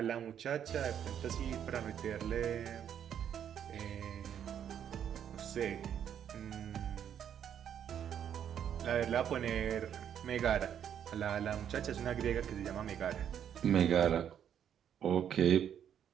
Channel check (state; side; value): quieter; left; 9.1 dB